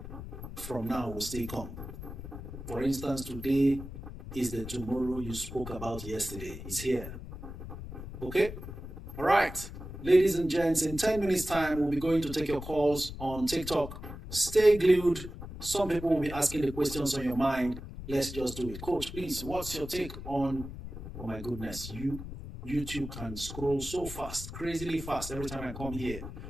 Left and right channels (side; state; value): left; noise; rumble, 10 dB below the sound